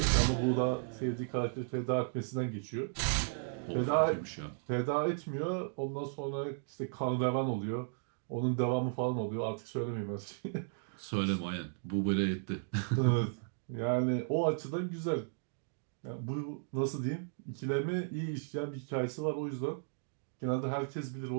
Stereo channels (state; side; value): silent; left; digital silence